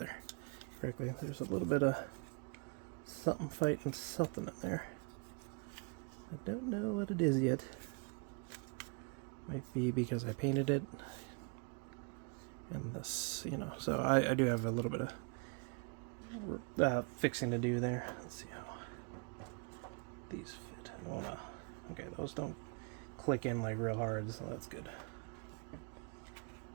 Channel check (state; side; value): quieter; left; 33.6 dB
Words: correctly. There's a little bit of something fighting something in there. I don't know what it is yet. Might be because I painted it. And this, you know, so I do have a little bit of fixing to do there. Let's see how these fit. I don't want to, okay, those don't click in like real hard, so that's good.